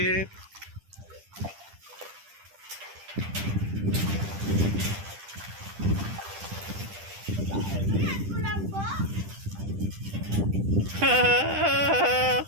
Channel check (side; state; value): left; late; 10 ms